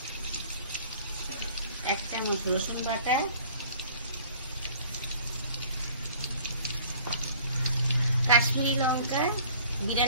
1 চামচ রসুন বাটা, কাশ্মীরি লঙ্কা,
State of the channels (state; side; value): inverted; both; correlation -0.52